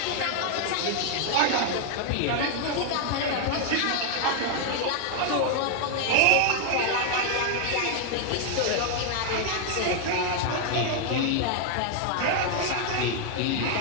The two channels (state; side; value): different; both; correlation 0.00